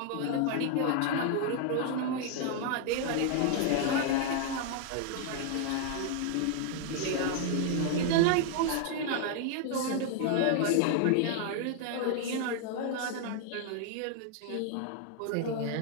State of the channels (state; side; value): different; both; correlation 0.00